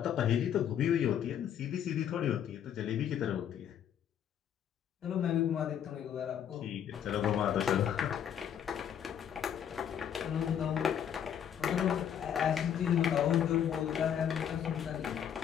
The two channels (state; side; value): quieter; right; 9.1 dB